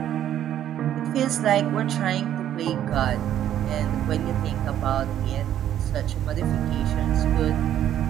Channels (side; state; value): left; quieter; 11.1 dB